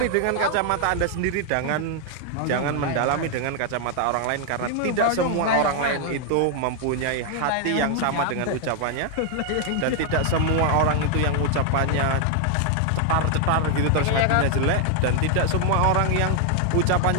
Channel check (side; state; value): both; different; correlation 0.00